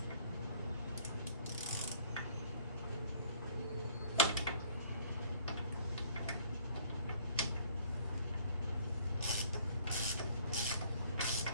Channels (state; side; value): inverted; both; correlation -0.57